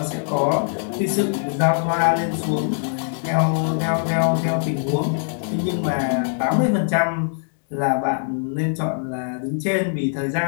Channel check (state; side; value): silent; right; digital silence